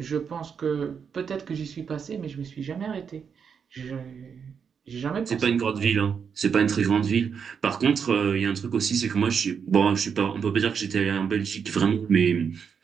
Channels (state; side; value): quieter; left; 6.7 dB